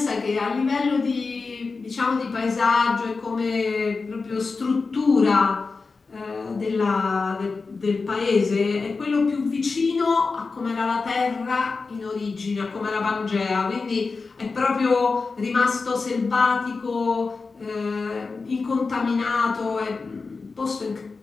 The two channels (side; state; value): right; quieter; 4.3 dB